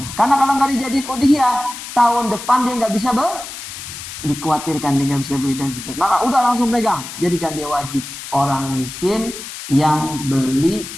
Karena kalau nggak dijadiin udhiyah, tahun depan dia nggak bisa dikhawatirkan dia nggak bisa beli dan seterusnya. Maka udah langsung pegang, jadikan dia wajib orang miskin yang beli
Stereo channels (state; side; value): noise; left; hiss, 10 dB below the sound